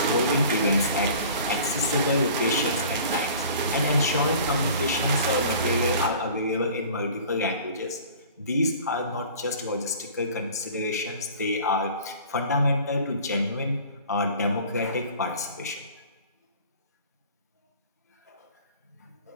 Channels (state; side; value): inverted; both; correlation -0.45